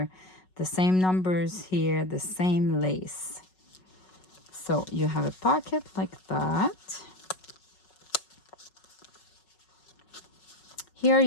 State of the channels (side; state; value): right; late; 5.4 ms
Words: the same numbers here, the same lace. So you have a pocket like that. Here